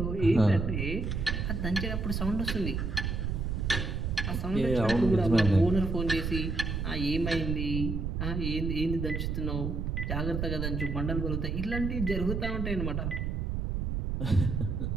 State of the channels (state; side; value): noise; right; rumble, 1 dB below the sound